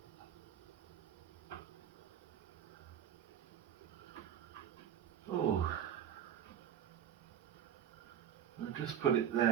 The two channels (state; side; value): quieter; left; 9.6 dB